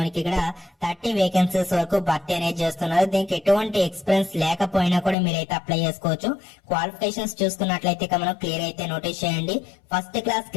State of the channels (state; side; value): drops out; right; at 5.2 s